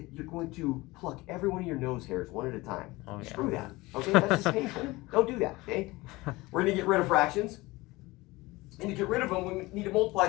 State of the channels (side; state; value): right; quieter; 21.1 dB